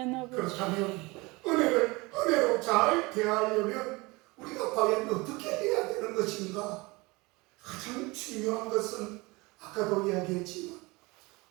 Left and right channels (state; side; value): quieter; left; 24.1 dB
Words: 아버지. 그렇다면 은혜로 잘 대하려면 우리가 과연 어떻게 해야 되는 것인가? 가장 중요한 것은 아까도 이야기했지만